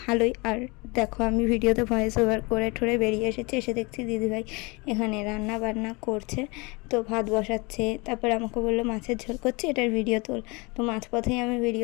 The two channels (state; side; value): quieter; right; 27.3 dB